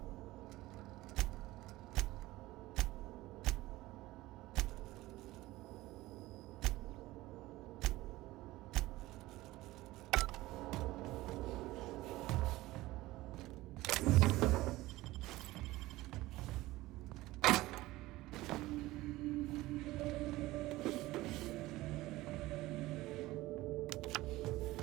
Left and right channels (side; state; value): left; quieter; 18.2 dB